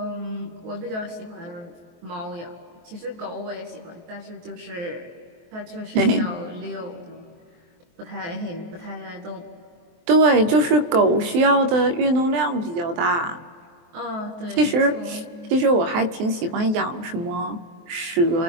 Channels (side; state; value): left; late; 23 ms